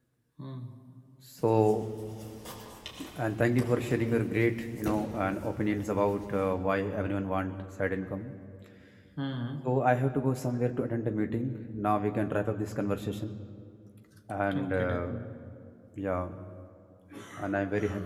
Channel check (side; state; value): both; identical; correlation 1.00